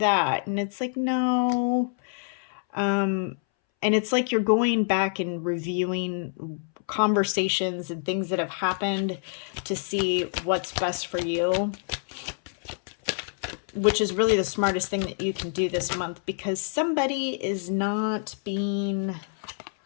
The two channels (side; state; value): right; silent; 60 dB below the other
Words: And it's like, no. And it's like you're going back and reviewing conversations and things that have happened to see what's best for you, which is really the smartest thing that you can do this month, because somebody is not being